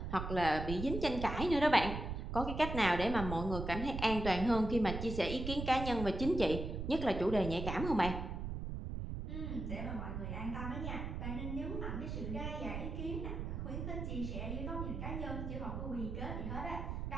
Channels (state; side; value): noise; right; rumble, 4 dB below the sound